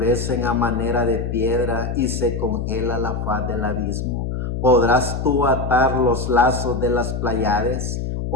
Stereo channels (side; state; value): left; noise; hum, 3 dB below the sound